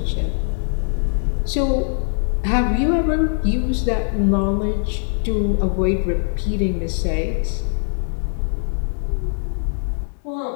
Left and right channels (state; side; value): silent; right; 65 dB below the other